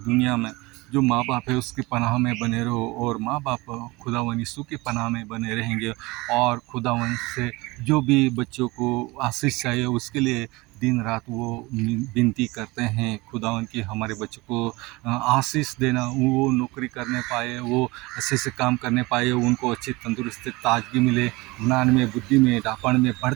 में जो माँ बाप है उसकी पनाह में बने रहो, और माँ बाप खुदावन यीशु की पनाह में बने रहेंगे। और खुदावन से जो भी बच्चों को आशीष चाहिए उसके लिए दिन रात वो विनती करते हैं खुदावन की हमारे बच्चों को आशीष देना, वो नौकरी करने पाए, वो अच्छे से काम करने पाए, उनको अच्छी तंदुरुस्ती ताजगी मिले, ज्ञान में बुद्धि में डापण में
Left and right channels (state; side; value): quieter; left; 22.9 dB